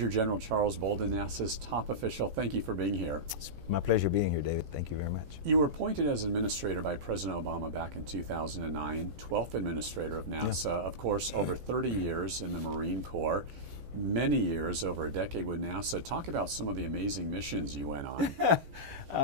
General Charles Bolden, NASA's top official, thank you for being here. It's my pleasure being here, David. Thank you very much. You were appointed as administrator by President Obama back in 2009, 12th administrator of NASA. Yeah. Of course, over 30 years in the Marine Corps, many years, over a decade with NASA. Talk about some of the amazing missions you went on.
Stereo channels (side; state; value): left; late; 14 ms